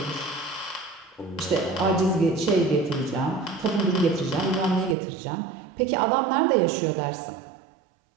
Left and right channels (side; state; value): left; drops out; at 5.0 s